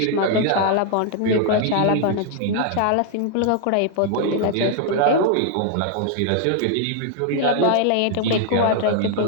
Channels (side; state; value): both; different; correlation 0.00